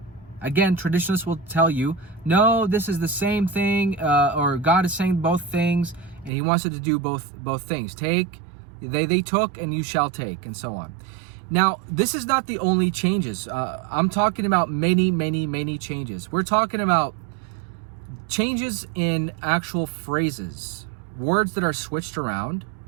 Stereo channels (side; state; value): left; drops out; at 6.3 s